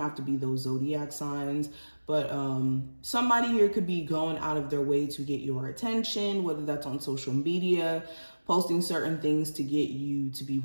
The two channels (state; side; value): inverted; both; correlation -1.00